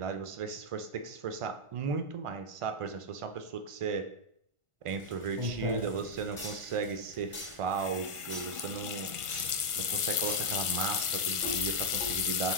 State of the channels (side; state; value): left; late; 1.5 ms